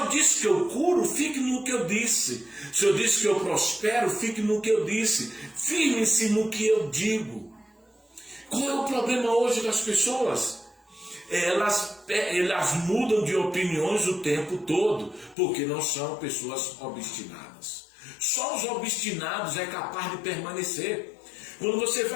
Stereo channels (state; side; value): drops out; right; at 15.4 s